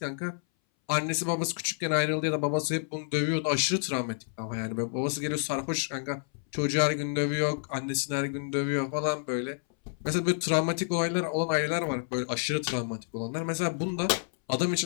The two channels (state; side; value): silent; right; 58 dB below the other